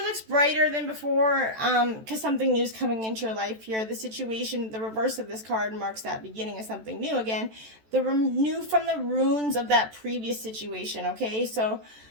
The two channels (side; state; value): left; late; 14 ms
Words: looks brighter than before because something new is coming into your life here. The situation, the reverse of this card, marks that beginning of something new again. The new from the ruins of that previous situation, okay? So